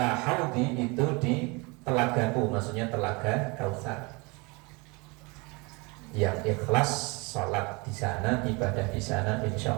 haudi, itu di telagaku, maksudnya telaga Kautsar. Yang ikhlas sholat di sana, ibadah di sana, insya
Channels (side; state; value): left; quieter; 27.6 dB